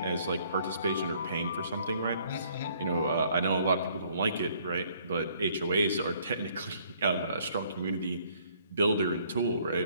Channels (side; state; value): both; inverted; correlation -0.62